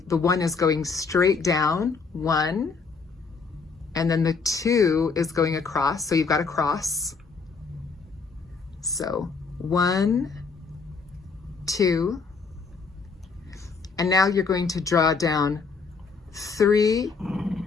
the 1 is going straight down, 1, and then the 2 is going across, so you've got a cross. So 1, 2, and now you're going to draw down 3,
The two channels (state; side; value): quieter; right; 4.8 dB